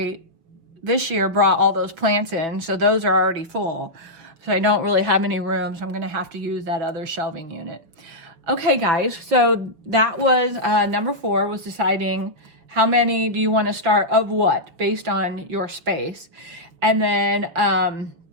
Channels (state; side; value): late; left; 6.0 ms